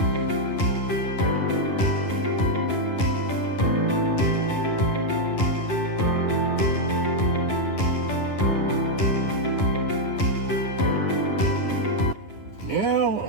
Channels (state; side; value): late; right; 11 ms